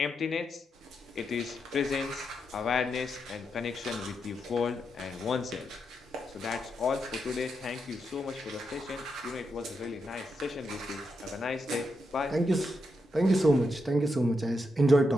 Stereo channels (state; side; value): normal; both; correlation 0.84